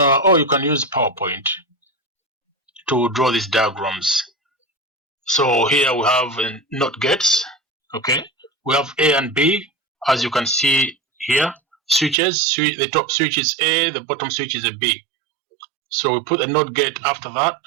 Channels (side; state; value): left; drops out; at 12.2 s